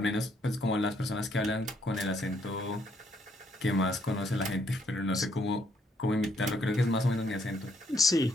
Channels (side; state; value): both; normal; correlation 0.71